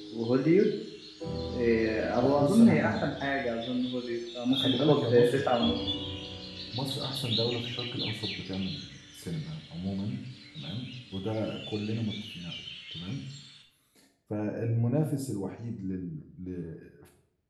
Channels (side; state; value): both; identical; correlation 1.00